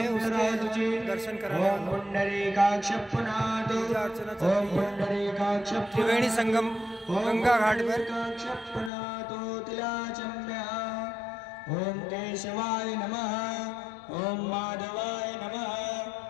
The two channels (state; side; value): drops out; right; at 8.9 s